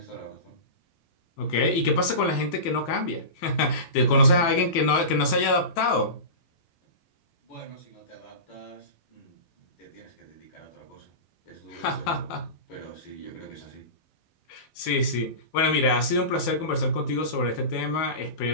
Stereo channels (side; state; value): right; late; 12 ms